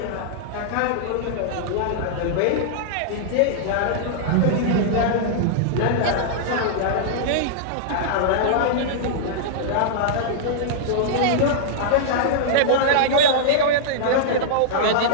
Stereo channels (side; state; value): both; different; correlation -0.02